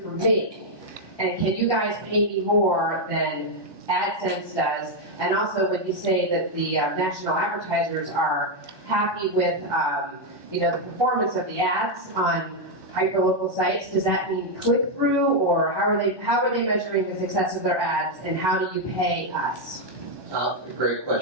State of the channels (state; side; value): late; left; 1.2 ms